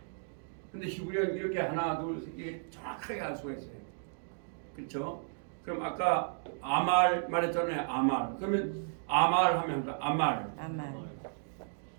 근데 히브리어는 이렇게 하나 둘 셋 이게 정확하게 알 수가 있어요. 그렇죠? 그럼 아까 아말 말했잖아요. 아말. 그러면 아말 하면 아말.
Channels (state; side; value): silent; left; digital silence